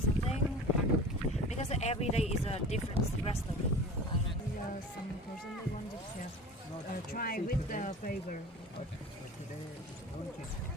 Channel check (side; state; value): both; normal; correlation 0.38